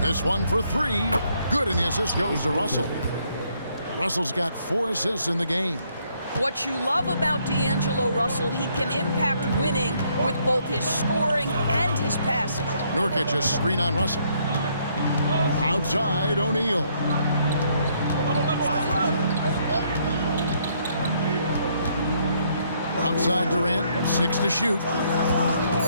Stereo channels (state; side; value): inverted; both; correlation -0.70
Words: one for 3. Good, and the assist goes to Russell. Russell's got 4 assists in the game. What you love about D'Angelo Russell, he can impact winning with both his scoring and his passing. Nurkic a screen on Russell. Outside, O'Neal. Outside Durant, 6 to shoot.